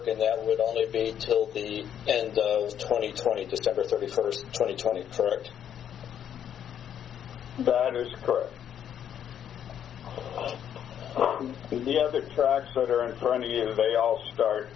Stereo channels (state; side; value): quieter; right; 9.4 dB